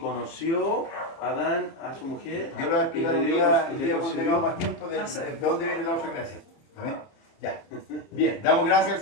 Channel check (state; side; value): late; right; 30 ms